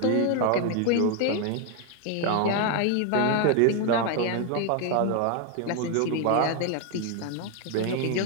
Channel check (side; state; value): both; different; correlation 0.01